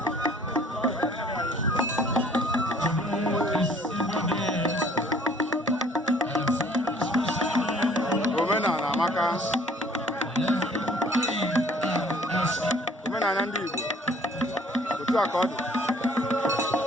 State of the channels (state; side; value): normal; both; correlation 0.56